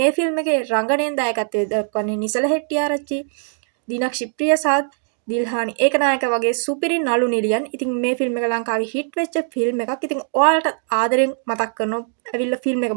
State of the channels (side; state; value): left; silent; 57 dB below the other